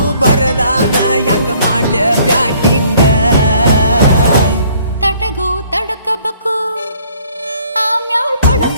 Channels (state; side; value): inverted; both; correlation -0.59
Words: ಬರದಾನ ಹೆಂಗ ಮಾಡ್ಲ ಬ್ಯಾಟಿಂಗ ತಟಗೂ ತಡಕಬೇಕು ಆಮ್ಯಾಲ್